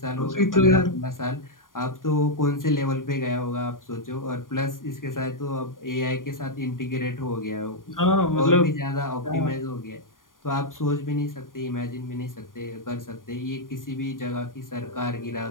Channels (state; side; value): late; right; 0.90 ms